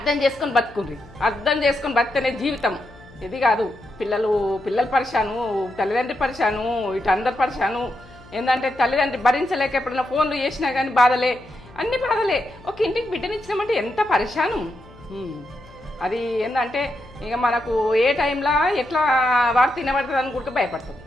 చేసుకొని బతికితేనే జీవితం. ఇది కాదు పిల్లలు పరిశాను, తల్లిదండ్రి పరిశాను, ఇటు అందరు పరిశాను. ఏంటంటే తల్లిదండ్రి భరించలేక ఎప్పుడైనా ఫోన్లు చేసినా కానీ బాధలే, అన్ని బాధలే. ఒక ఇంటికి బిడ్డనిచ్చినామంటే ఎంత పరిశాను. అది ఏంటంటే ఇక మనకు ఏ టైంలో ఎట్లా వార్త తినబడుతుంది అని కూడా భయపడతాం,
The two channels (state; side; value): noise; left; hum, 23 dB below the sound